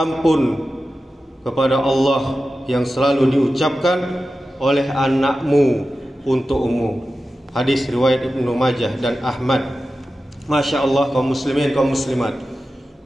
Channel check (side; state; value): both; normal; correlation 0.93